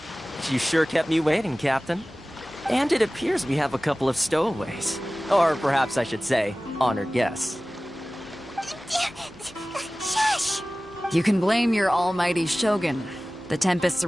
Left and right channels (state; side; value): normal; both; correlation 0.97